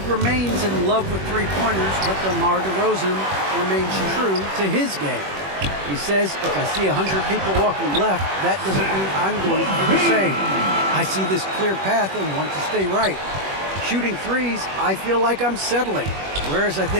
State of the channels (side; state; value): left; late; 21 ms